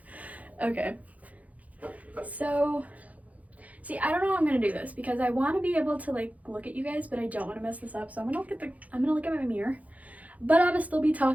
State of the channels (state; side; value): late; left; 0.072 ms